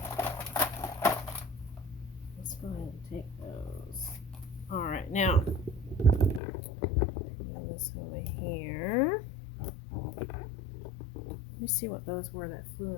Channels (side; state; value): right; drops out; at 6.4 s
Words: Let's go ahead and take those. Alright, now, move this over here. Let me see what those were that flew